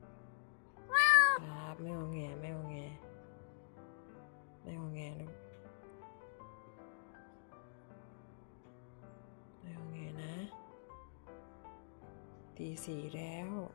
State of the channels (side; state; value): right; silent; digital silence